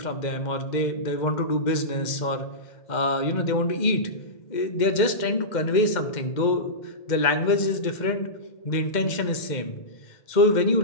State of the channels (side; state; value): right; late; 2.1 ms